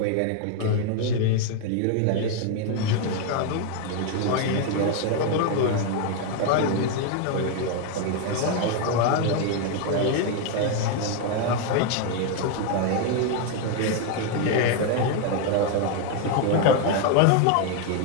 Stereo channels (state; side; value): different; both; correlation 0.01